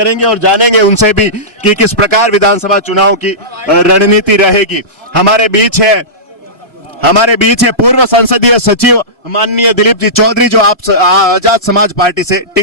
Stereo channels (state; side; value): normal; both; correlation -0.19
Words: और जानेंगे उनसे भी कि किस प्रकार विधानसभा चुनाव की रणनीति रहेगी। हमारे बीच है पूर्व संसदीय सचिव माननीय दिलीप जी चौधरी जो आप आजाद समाज पार्टी से